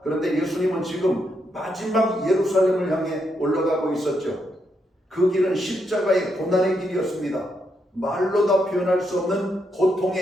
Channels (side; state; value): both; normal; correlation 0.80